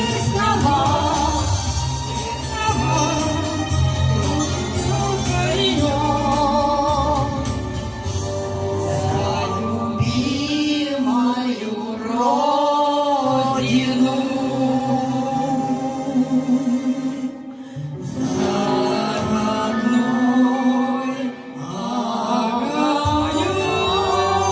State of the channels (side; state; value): both; identical; correlation 1.00